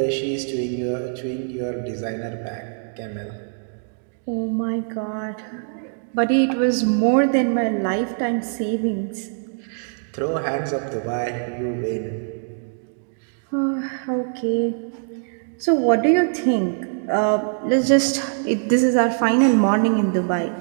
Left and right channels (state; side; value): silent; left; digital silence